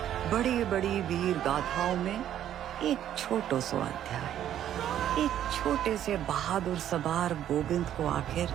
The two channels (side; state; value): left; quieter; 11.0 dB